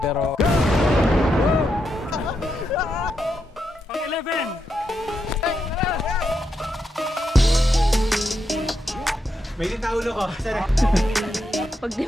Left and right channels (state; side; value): normal; both; correlation 0.83